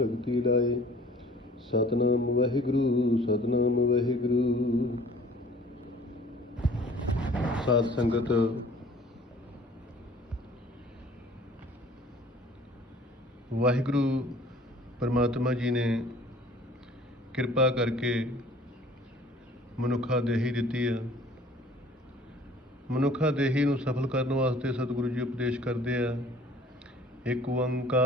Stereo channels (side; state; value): both; normal; correlation 0.51